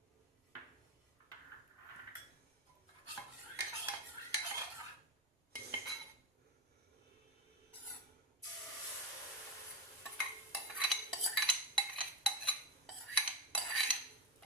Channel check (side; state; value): both; normal; correlation 0.19